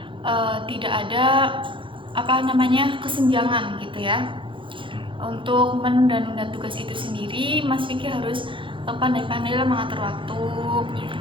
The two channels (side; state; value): left; late; 0.25 ms